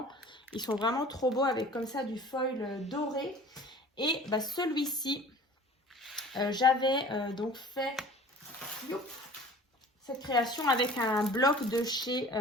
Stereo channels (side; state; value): both; normal; correlation 0.45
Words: Ils sont vraiment trop beaux avec comme ça du foil doré. Et bah, celui-ci, j'avais donc fait cette création avec un bloc de chez